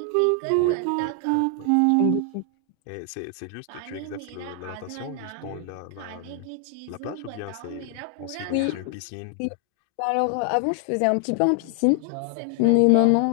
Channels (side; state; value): both; different; correlation 0.00